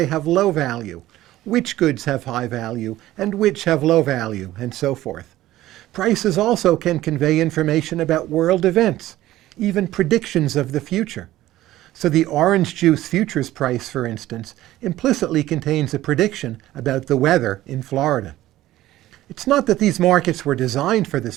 have low value, which goods have high value and which have low value, and so forth. Prices also can convey information about world events, even predictions of the future. So the orange juice futures price, for instance, implicitly contains a prediction about the weather in Florida. It's not that these markets were designed for this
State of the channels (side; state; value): left; quieter; 15.2 dB